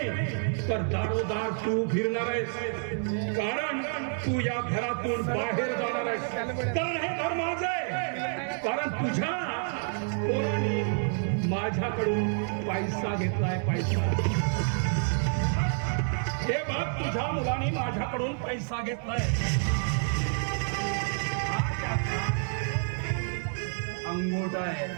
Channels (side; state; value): left; silent; 59 dB below the other